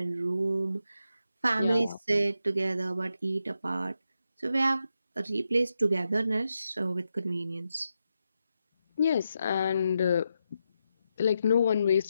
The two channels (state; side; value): inverted; both; correlation -0.86